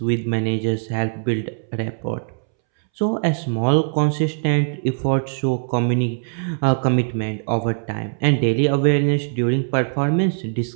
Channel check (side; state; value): left; silent; 65 dB below the other